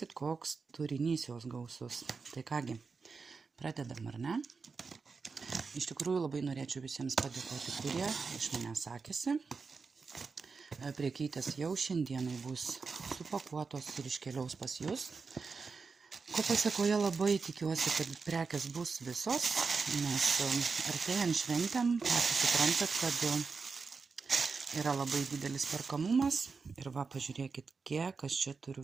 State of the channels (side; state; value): left; quieter; 4.8 dB